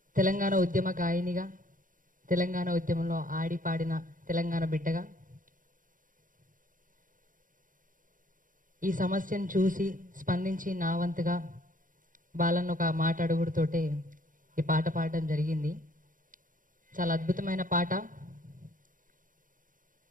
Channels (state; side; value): late; left; 0.39 ms